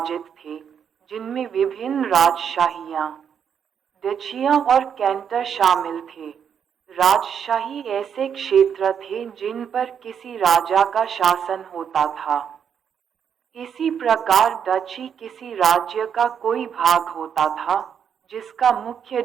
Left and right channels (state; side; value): quieter; left; 7.8 dB